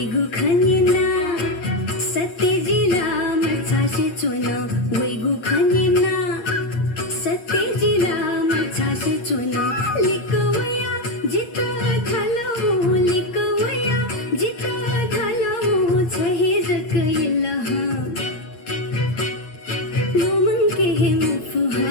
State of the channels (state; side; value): late; right; 8.6 ms